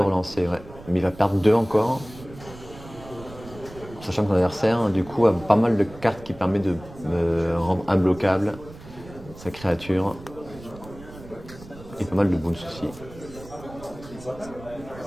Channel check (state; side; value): noise; right; rumble, 17 dB below the sound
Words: ouais. Mais il va perdre 2 encore. Sachant que son adversaire, du coup, a pas mal de cartes qui permettent de rendre imbloquable sa créature. Et pas mal de boons aussi.